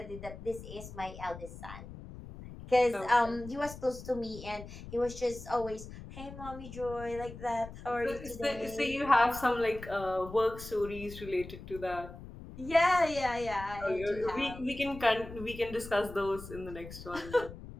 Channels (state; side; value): noise; left; rumble, 13 dB below the sound